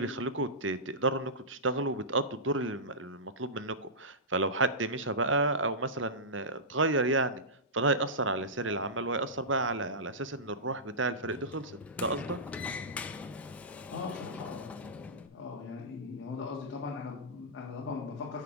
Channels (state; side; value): normal; both; correlation -0.17